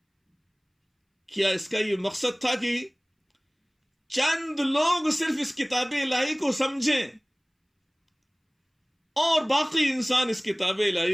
کیا اس کا یہ مقصد تھا کہ چند لوگ صرف اس کتاب الہی کو سمجھیں اور باقی انسان اس کتاب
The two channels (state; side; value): identical; both; correlation 1.00